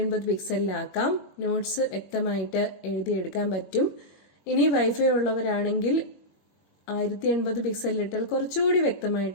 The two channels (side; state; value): right; late; 21 ms